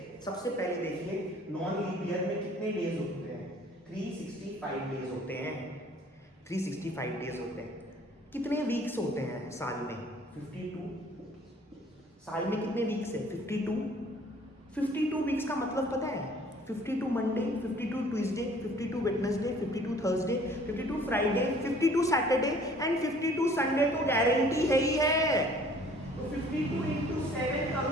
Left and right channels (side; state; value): both; normal; correlation 0.54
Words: सबसे पहले देखिए, नॉन लीप ईयर में कितने डेज होते हैं? 365 डेज होते हैं। 365 डेज होते हैं। कितने वीक्स होते हैं साल में? 52। साल में कितने वीक्स है? 52। 52 वीक्स का मतलब पता है? 52 Monday, 52 Tuesday, 52 Wednesday, 52 Thursday, 52 Friday, 52 Saturday and 52 Sunday तो गारंटी है ही है। तो 52 into 7